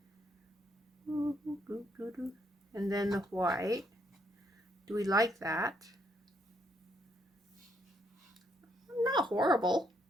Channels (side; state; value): both; normal; correlation 0.73